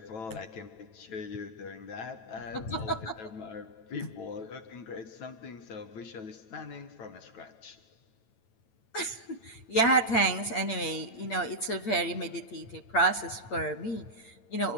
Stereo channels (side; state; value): right; late; 9.0 ms